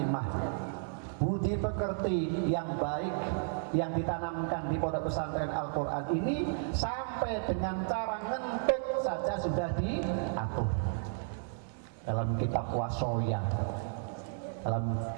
budi pekerti yang baik yang ditanamkan di pondok pesantren Al-Quran ini sampai dengan cara ngentut saja sudah diatur dalam kitab Wasoya, dalam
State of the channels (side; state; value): left; silent; 56 dB below the other